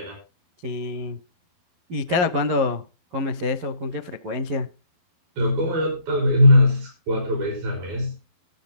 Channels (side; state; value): left; late; 11 ms